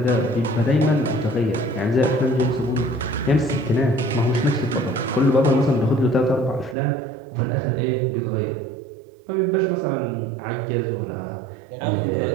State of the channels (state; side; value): drops out; left; at 6.8 s